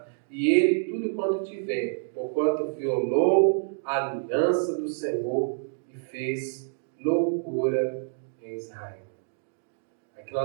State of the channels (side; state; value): left; silent; digital silence